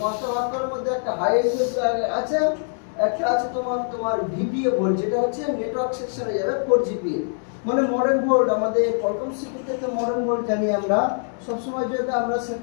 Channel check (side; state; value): right; silent; 63 dB below the other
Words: 5টা বাক কয়েলের মধ্যে একটা হাই এলইউ আছে, একটা আছে তোমার ভিপিএ ভোল্ট, যেটা হচ্ছে নেটওয়ার্ক সেকশনে যাবে 4GPA, মানে মডার্ন ভোল্ট। আমাদের কলকম সিপিইউ তে মডার্ন ভোল্ট জানি আমরা, সব সময় যেটা আমরা